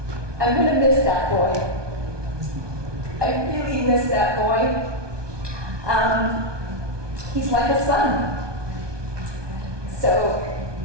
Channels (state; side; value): late; left; 1.2 ms